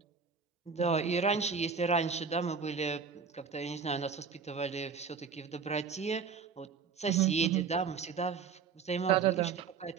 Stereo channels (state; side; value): quieter; left; 5.9 dB